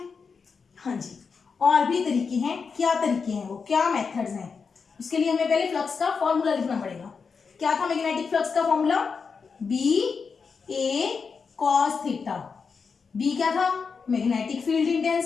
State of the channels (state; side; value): quieter; right; 5.4 dB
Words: हाँ जी, और भी तरीके हैं। क्या तरीके हैं वो, क्या मेथड्स हैं? उसके लिए हमें पहले फ्लक्स का फॉर्मूला लिखना पड़ेगा। क्या था मैग्नेटिक फ्लक्स का formula? BA cos theta. B क्या था? Magnetic field